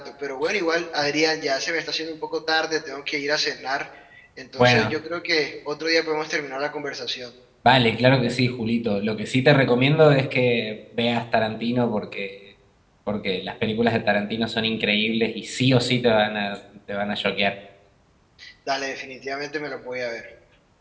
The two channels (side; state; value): both; identical; correlation 1.00